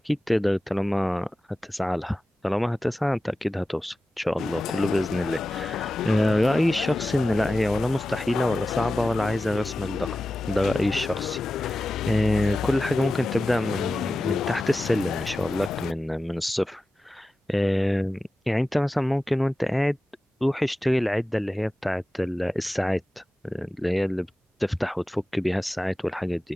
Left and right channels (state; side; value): normal; both; correlation 0.94